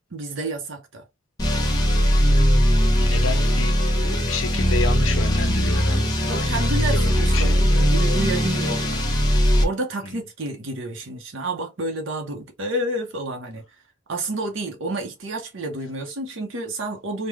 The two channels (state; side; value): normal; both; correlation 0.79